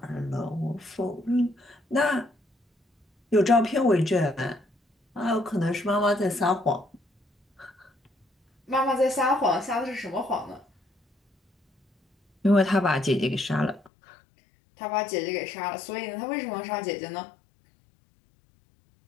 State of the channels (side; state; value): right; drops out; at 13.9 s